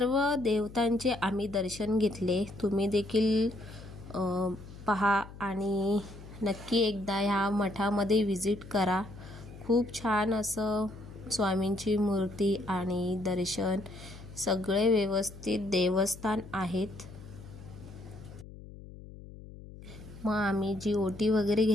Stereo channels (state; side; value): noise; left; hum, 16 dB below the sound